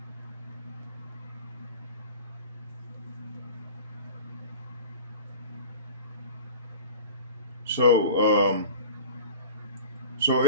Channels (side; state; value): both; inverted; correlation -0.35